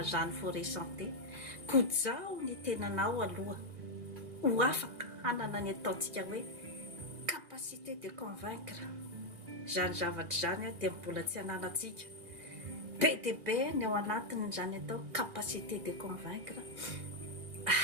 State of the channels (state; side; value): late; left; 1.8 ms